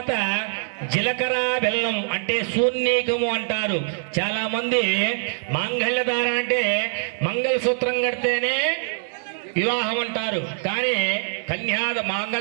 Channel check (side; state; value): left; silent; digital silence